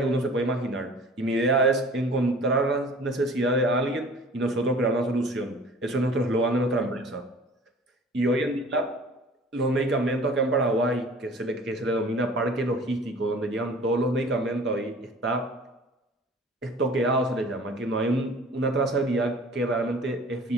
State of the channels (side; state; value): both; normal; correlation 0.47